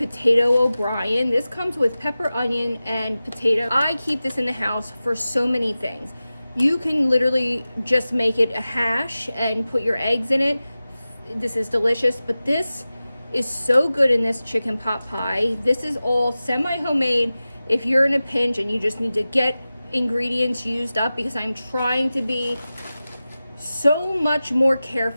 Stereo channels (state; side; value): inverted; both; correlation -0.96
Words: O'Brien, this comes with pepper, onion, and potato. I keep this in the house for so many things. You can literally just make it a hash and put your eggs in it. This is delicious, but this is so good in this chicken pot pie. This is all semi-homemade if you're in a pinch and you just need to get ingredients used up, because I'm trying to be so much more